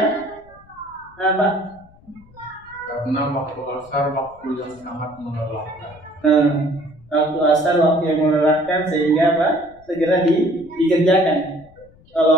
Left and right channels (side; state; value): left; noise; rumble, 26 dB below the sound